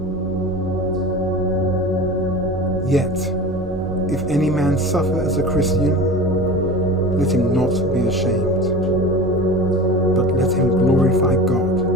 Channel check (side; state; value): both; normal; correlation 0.33